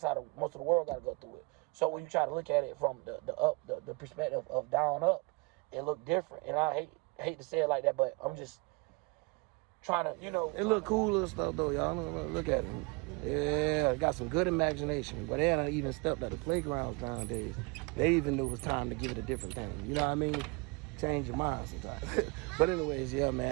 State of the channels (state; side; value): quieter; left; 28.7 dB